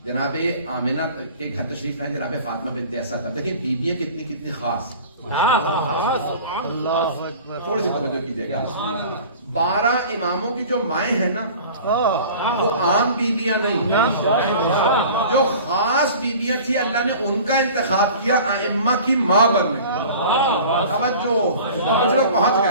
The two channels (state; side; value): inverted; both; correlation -0.42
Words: جناب آمنہ کے گھر تشریف لائے جناب فاطمہ بنت اسد. اب دیکھیں بیویاں کتنی خاص. تھوڑی سی توجہ کیجیے گا. 12 اماموں کی جو مائیں ہیں نا وہ عام بیویاں نہیں، جو خاص بیویاں تھی اللہ نے ان کا انتخاب کیا ائمہ کی ماں بننے کے. توجہ، کچھ لوگ پہنچ